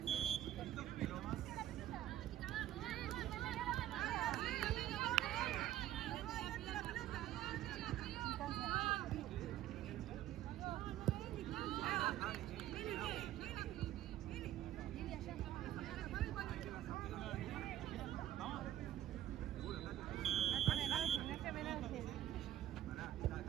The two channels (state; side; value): quieter; left; 12.6 dB